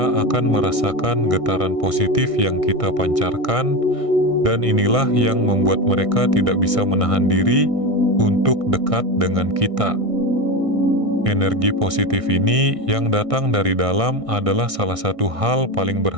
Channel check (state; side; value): late; left; 1.6 ms